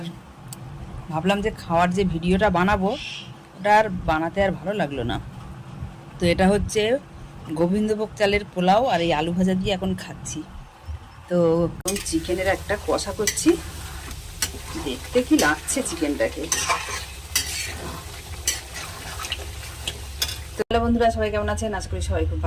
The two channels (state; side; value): identical; both; correlation 1.00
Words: ভাবলাম যে খাওয়ার যে ভিডিওটা বানাবো ওটা আর বানাতে আর ভালো লাগলো না। তো এটা হচ্ছে গোবিন্দভোগ চালের পোলাও, আর এই আলু ভাজা দিয়ে এখন খাচ্ছি। তো চিকেনের একটা কষা করছি, দেখতে কি লাগছে চিকেনটাকে। তো হ্যালো বন্ধুরা, সবাই কেমন আছেন? আশা করি সবাই খুব